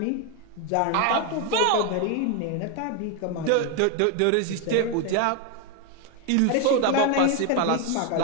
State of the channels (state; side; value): different; both; correlation 0.01